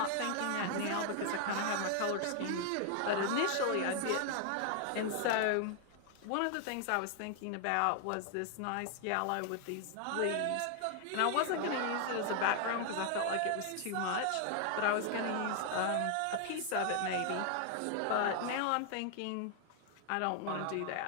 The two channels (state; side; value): different; both; correlation 0.00